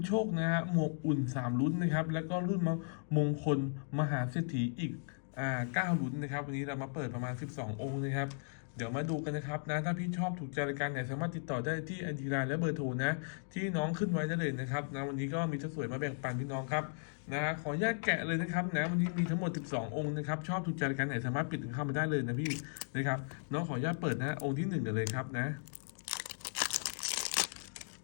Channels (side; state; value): right; silent; digital silence